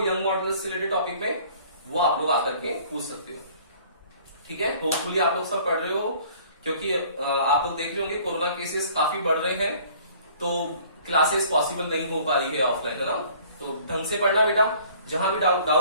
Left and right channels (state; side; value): inverted; both; correlation -0.53